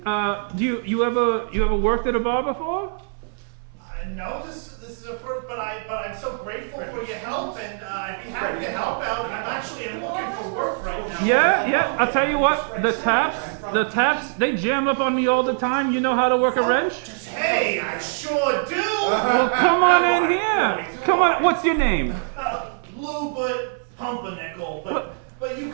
you ever worked at a bar before? No, this is a first, but I'm so grateful for your help, and I'd be happy to help out. I'm looking for work right now. Yeah. I'll tell you what, the taps, they jam up on me all the time. You know how to work a wrench? Hey, I sure do. Come on in here. Come on. What's your name? Lou, but Pumpernickel, but you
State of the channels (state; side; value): silent; left; 63 dB below the other